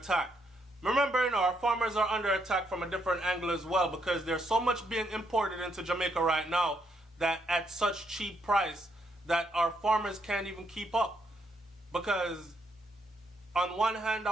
Remember, our farmers are under attack from a different angle as well, because there's so much being imported into Jamaica right now that at such cheap price that our farmers can't even keep up. Because on one hand,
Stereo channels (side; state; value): both; normal; correlation 0.75